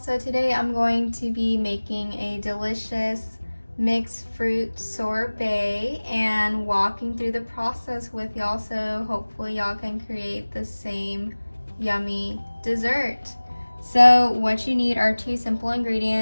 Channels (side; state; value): both; inverted; correlation -1.00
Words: today I'm going to be making a delicious mixed fruit sorbet and walking through the process with y'all, so hopefully y'all can create the same yummy dessert. So what you need are two simple